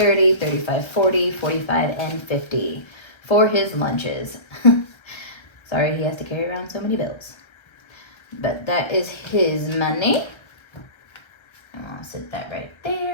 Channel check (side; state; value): right; late; 1.3 ms